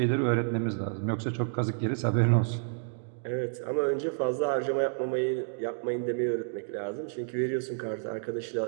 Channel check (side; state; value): left; silent; digital silence